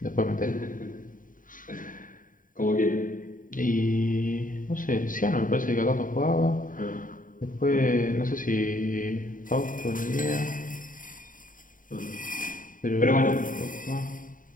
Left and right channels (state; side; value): late; right; 0.39 ms